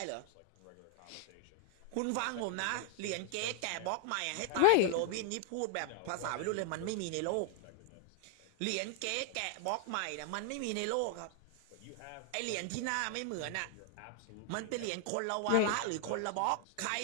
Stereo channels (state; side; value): different; both; correlation 0.00